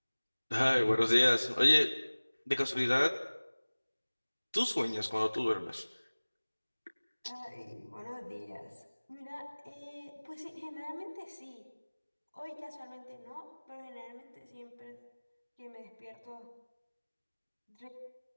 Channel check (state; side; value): inverted; both; correlation -1.00